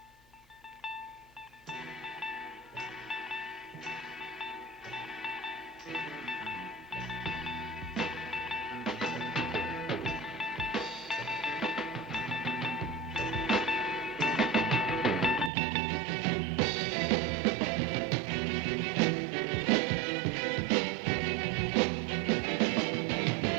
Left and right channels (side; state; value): left; drops out; at 15.5 s